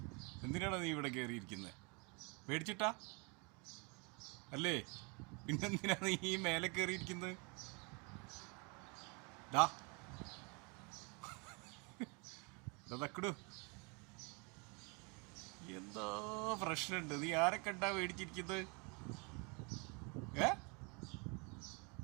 എന്തിനാണോ നീ ഇവിടെ കയറിയിരിക്കുന്നത്? പേടിച്ചിട്ടാ അല്ലേ? പിന്നെന്തിനാ നീ ഈ മേലെ കയറിയിരിക്കുന്നത്? തക്കടു, എന്തോ പ്രശ്നമുണ്ട്. നീ ആരെ കണ്ടാ പേടിച്ചിരിക്കുന്നത്?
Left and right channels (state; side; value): quieter; left; 31.5 dB